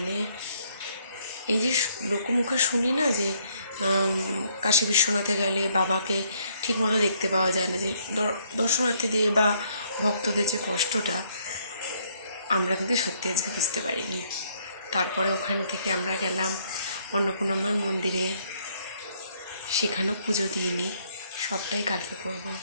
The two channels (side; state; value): both; inverted; correlation -0.67